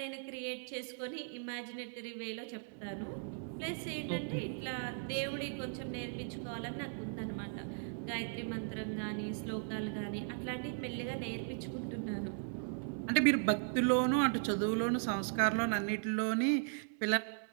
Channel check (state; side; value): silent; left; 53 dB below the other